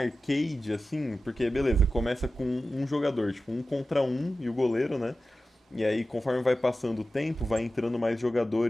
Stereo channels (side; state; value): both; normal; correlation 0.94